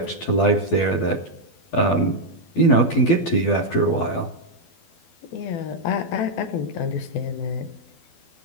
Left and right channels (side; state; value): right; late; 12 ms